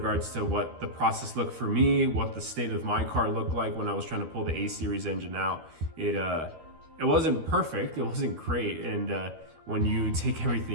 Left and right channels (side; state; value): left; late; 13 ms